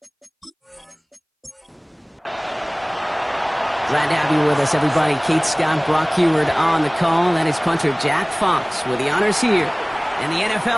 Glad to have you with us, everybody. Kate Scott, Brock Heward on the call. That is punter Jack Fox with the honors here. And the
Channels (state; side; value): identical; both; correlation 1.00